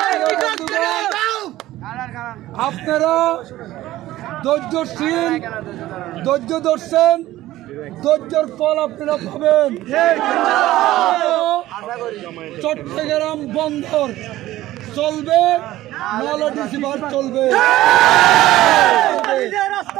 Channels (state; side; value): quieter; left; 15.6 dB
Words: আপনারা ধৈর্যশীল, ধৈর্য ধরছেন, ধৈর্যের ফল আপনারা পাবেন। চট্টগ্রাম বন্দর চলবে, নাহলে ডিসি পার্ক চলবে।